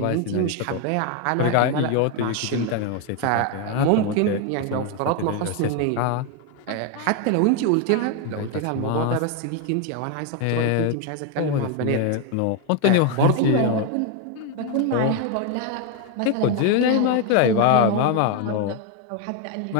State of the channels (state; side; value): different; both; correlation 0.01